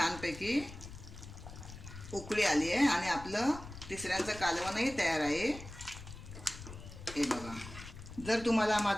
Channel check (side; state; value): left; noise; rumble, 13 dB below the sound